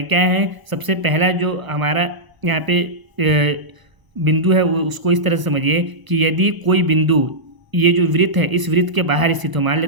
क्या है, सबसे पहला जो हमारा यहाँ पे बिंदु है वो उसको इस तरह से समझिए कि यदि कोई बिंदु, ये जो वृत्त है इस वृत्त के बाहर स्थित हो, मान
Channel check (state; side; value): late; left; 1.0 ms